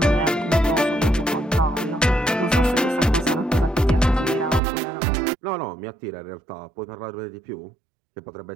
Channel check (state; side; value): drops out; left; at 4.6 s